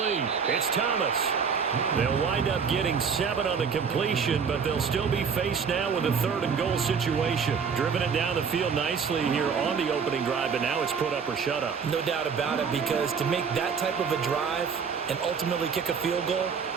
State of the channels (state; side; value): quieter; left; 6.2 dB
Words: It's Thomas. They'll wind up getting 7 on the completion, but they'll still be faced now with a 3rd and goal situation. Driven it down the field nicely here on the opening drive, but now it's put up or shut up. No doubt about it, because to make that type of a drive and ultimately kick a field goal